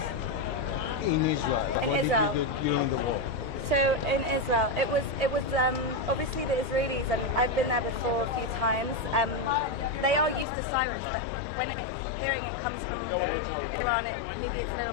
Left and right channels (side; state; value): right; drops out; at 10.5 s